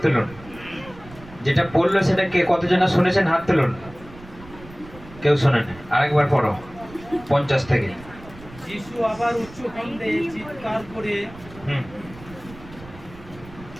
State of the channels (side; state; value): right; noise; rumble, 19 dB below the sound